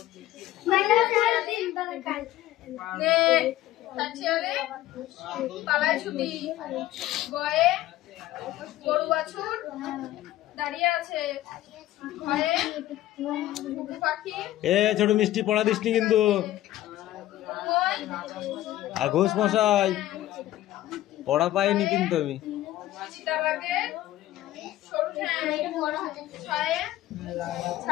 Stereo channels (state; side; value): quieter; right; 14.6 dB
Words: পালায় ছুটি গয়ে গরু বাছুর দাঁড়িয়ে আছে ঘরে পাখি এ ছোট মিষ্টি পড়া দিসনি কিন্তু। আর ঘোষ মশাই পড়া পাইনি কিন্তু আমি। চিতাবাঘের সরু ঠ্যাং